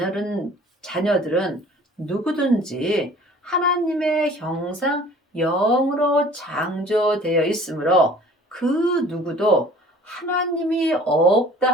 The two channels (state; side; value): normal; both; correlation 0.49